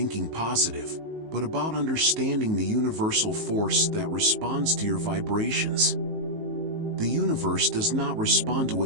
positive, but about understanding the universal force that responds to your vibrations. The universe does not respond to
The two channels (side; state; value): left; late; 19 ms